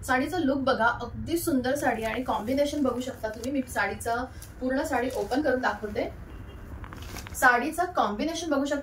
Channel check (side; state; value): both; identical; correlation 1.00